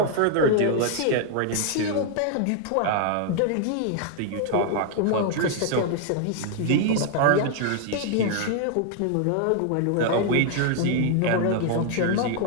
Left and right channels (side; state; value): both; different; correlation 0.00